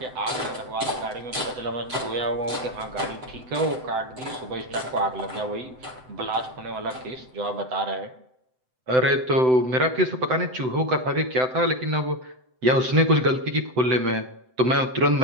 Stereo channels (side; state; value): left; late; 7.9 ms